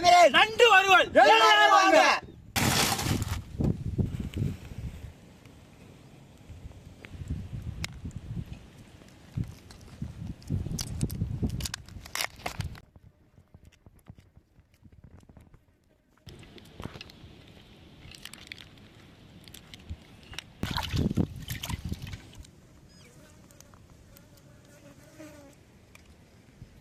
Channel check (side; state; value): both; identical; correlation 1.00